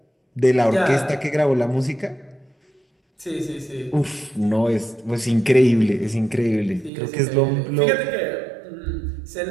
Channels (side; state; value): left; drops out; at 6.9 s